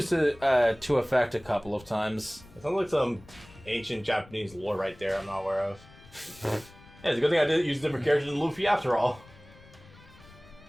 to effect a couple of times. It sounds like some ancient Japanese lore right there I'm not aware of. Yeah, it's a good thing I didn't use different characters than Luffy after all.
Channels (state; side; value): noise; left; rumble, 23 dB below the sound